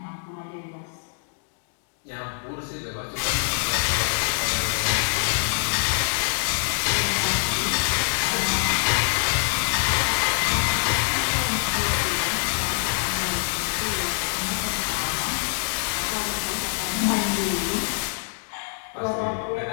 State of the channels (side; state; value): right; silent; digital silence